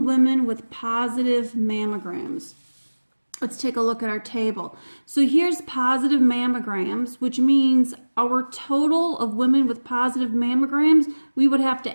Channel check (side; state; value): both; inverted; correlation -1.00